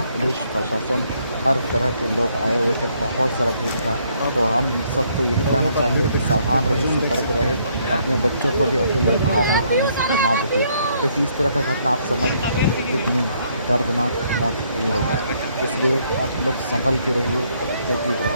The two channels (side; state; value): both; inverted; correlation -0.69